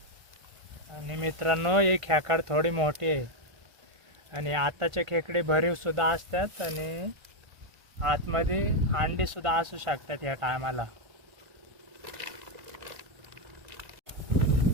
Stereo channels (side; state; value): left; late; 1.5 ms